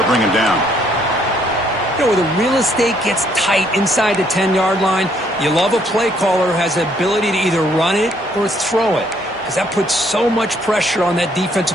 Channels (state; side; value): normal; both; correlation 0.67